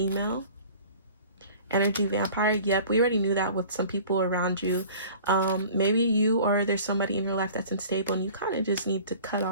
Energy vampire, yep, we already knew that with some people around you. Maybe you or there's somebody in your life that's unstable and you kind of just need to cut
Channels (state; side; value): inverted; both; correlation -0.46